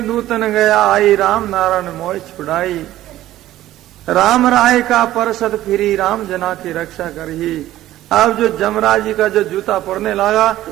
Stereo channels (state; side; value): quieter; left; 14.3 dB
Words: दूतन गया आई, राम नारायण मोह छुड़ाई। राम राय का परसत फिरी, राम जना की रक्षा करही। अब जो जमराज जी का जो जूता पड़ने लगा